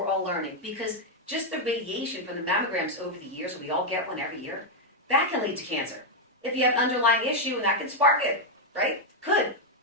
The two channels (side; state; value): both; normal; correlation 0.00